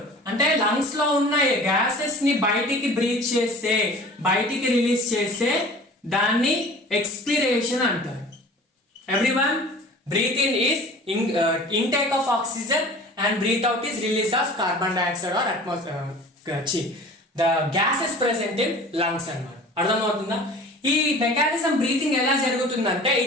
అంటే లంగ్స్ లో ఉన్న గ్యాసెస్ ని బయటికి బ్రీత్ చేస్తే, బయటికి రిలీజ్ చేస్తే దాన్ని ఎక్స్పిరేషన్ అంటారు. Everyone, breath in is intake of oxygen and breath out is release of carbon dioxide or the gases present in lungs అన్నమాట. అర్థమవుతుందా, ఈ మెకానిజం బ్రీతింగ్ ఎలా జరుగుతుందంటే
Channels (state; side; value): normal; both; correlation 0.43